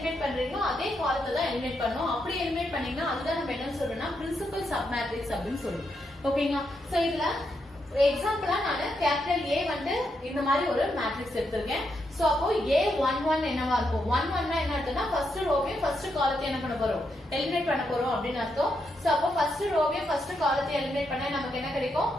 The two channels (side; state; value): both; normal; correlation 0.81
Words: பண்றீங்களோ அதே காலத்தை தான் எலிமினேட் பண்ணணும். அப்படி எலிமினேட் பண்ணீங்கன்னா அதுதான் நம்ம என்ன சொல்றோம்னா பிரின்சிபல் சப் மேட்ரிக்ஸ் அப்படின்னு சொல்றோம். ஓகேங்களா? சோ இதுல எக்ஸாம்பிளா நான் கேபிட்டல் A வந்து இந்த மாதிரி ஒரு மேட்ரிக்ஸ் எடுத்திருக்கேன். சோ அப்போ A11 என்னவா இருக்கும்? 11 என்ன அர்த்தம்னா ஃபர்ஸ்ட் ரோவையும் ஃபர்ஸ்ட் காலத்தையும் என்ன பண்ண போறோம்? எலிமினேட் பண்ண போறோம் அப்படின்னு அர்த்தம். சோ அப்போ ஃபர்ஸ்ட் ரோவையும் ஃபர்ஸ்ட் காலத்தையும் எலிமினேட் பண்ணா நமக்கு என்ன கிடைக்கும்?